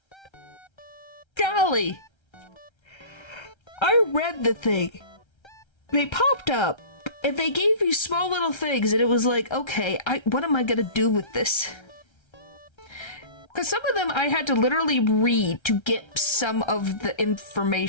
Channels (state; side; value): late; right; 1.3 ms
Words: Golly! I read the thing. They popped up, and they gave me small little things, and it was like, okay, what am I gonna do with this? Because some of them I had to literally read to get some of the